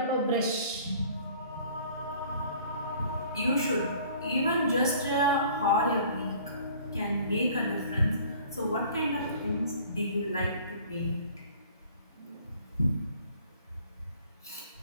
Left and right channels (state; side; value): inverted; both; correlation -0.52